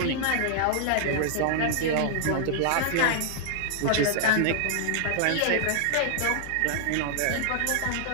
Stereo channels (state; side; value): different; both; correlation 0.00